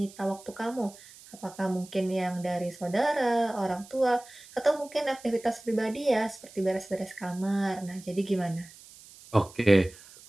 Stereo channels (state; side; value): noise; right; hiss, 21 dB below the sound